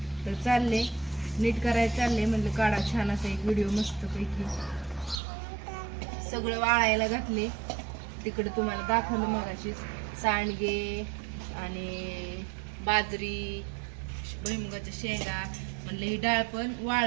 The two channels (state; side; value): drops out; left; at 5.2 s